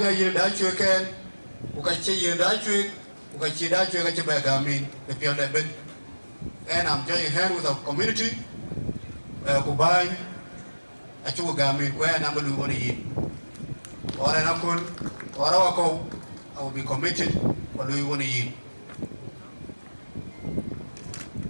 Yin Dachuek, Ukachi Yin Dachuek, Ukachi Dachuek, Bagami, the Piano Bed. And I'm joining hand with our community, Kubai, Achugami, where number we want to eat. Or an Akul, or Awako, I will be committed, what do we want to eat.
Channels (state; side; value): inverted; both; correlation -1.00